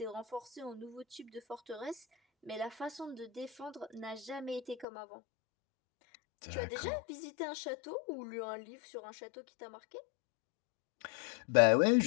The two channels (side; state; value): right; drops out; at 4.9 s